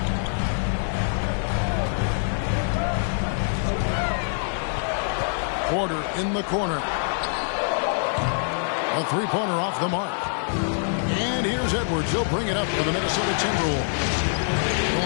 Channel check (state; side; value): silent; right; 60 dB below the other